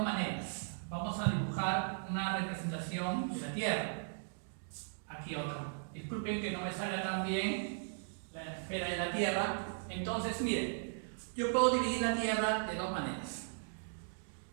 maneras. Vamos a dibujar una representación de la Tierra. Aquí otra. Disculpen que no me salga tan bien la esfera de la Tierra. Entonces, miren, yo puedo dividir la Tierra de dos maneras.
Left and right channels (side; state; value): left; silent; digital silence